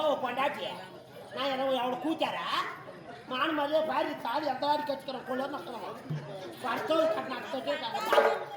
கொண்டாட்டி நான் என்ன அவனை கூச்சாரா மான மாதிரியே பாரு தாடி எந்த வாடி கற்றுக்கிறேன் கொள்ள மக்களும் படுத்தோடு கட்டினாட்டு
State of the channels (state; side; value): identical; both; correlation 1.00